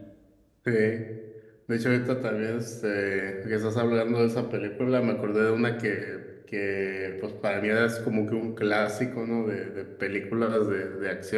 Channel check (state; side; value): identical; both; correlation 1.00